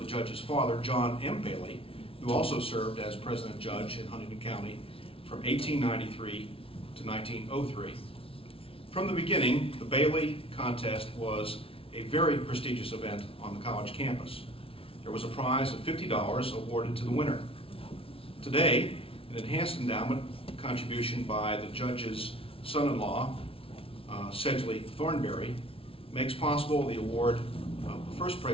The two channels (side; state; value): right; late; 0.26 ms